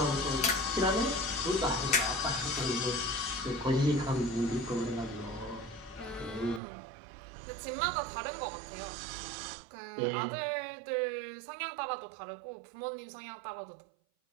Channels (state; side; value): drops out; left; at 6.6 s